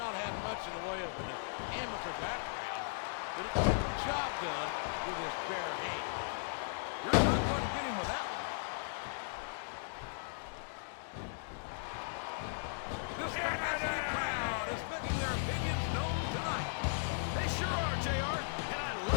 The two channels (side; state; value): right; silent; digital silence